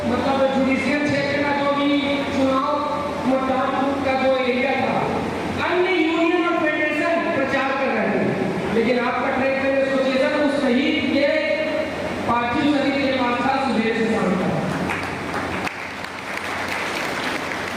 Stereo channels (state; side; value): identical; both; correlation 1.00